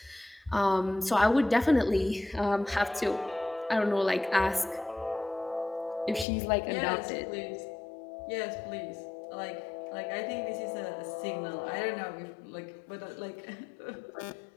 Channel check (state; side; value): drops out; right; at 6.2 s